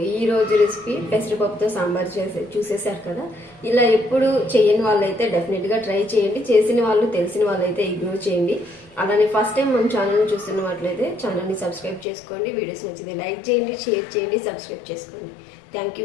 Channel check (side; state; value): right; drops out; at 12.1 s